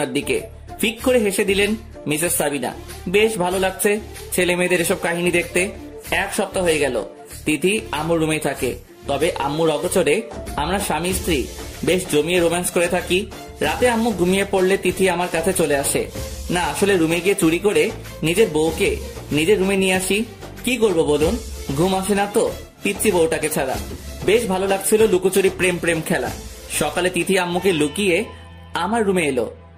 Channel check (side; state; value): both; identical; correlation 1.00